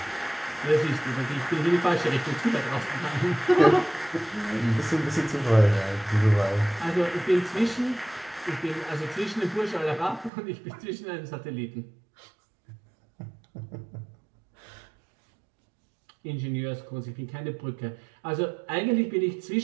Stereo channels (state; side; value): drops out; left; at 10.3 s